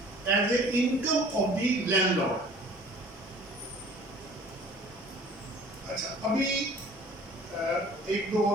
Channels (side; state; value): both; normal; correlation 0.49